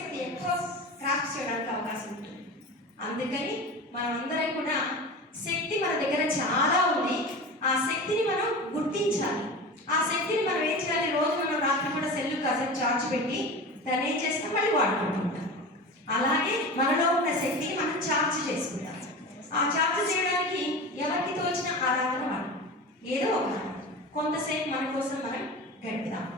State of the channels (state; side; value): normal; both; correlation 0.31